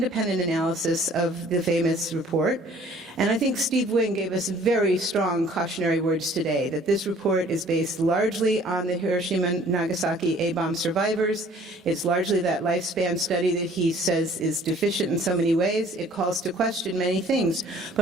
analysis of the famous report, and I think Steve Wing gave us very strong cautionary words today, that this report is based largely on the Hiroshima and Nagasaki A-bomb survivors. It's largely that lifespan study that he says is deficient in so many ways. It calls to question many things.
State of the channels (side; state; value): both; normal; correlation 0.54